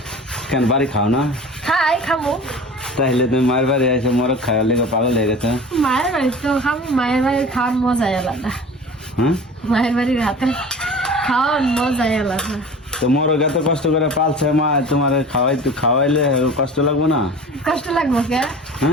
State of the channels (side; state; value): both; normal; correlation 0.38